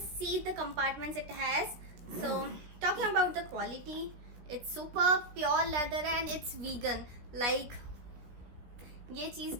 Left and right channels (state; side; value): late; left; 16 ms